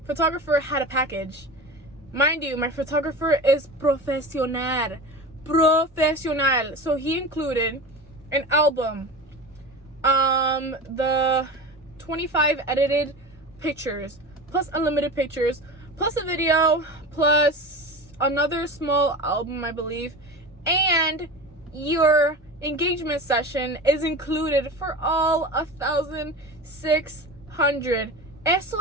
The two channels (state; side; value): normal; both; correlation 0.30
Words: photographer had a package. Mind you, my photographer is profesional. So he included an album, the 25 edited pictures, plus unlimited pictures, plus a video, plus another small album, I believe, and your engagement session is included for all 1,600. Eso